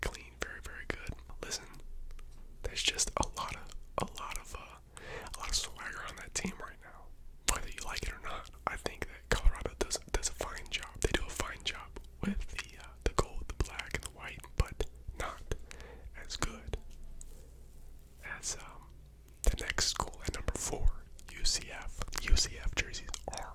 clean, very, very good. Listen, there's just a lot of swagger on that team right now. Whether you like it or not, I think that Colorado does a fine job. They do a fine job with the gold, the black, and the white, but not as good as the next school at number 4, UCF. UCF jerseys are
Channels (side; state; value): both; identical; correlation 1.00